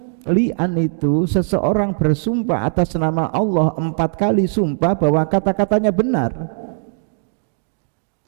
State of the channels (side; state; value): left; silent; 66 dB below the other